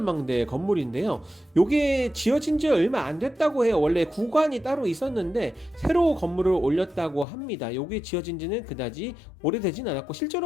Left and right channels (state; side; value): drops out; right; at 7.2 s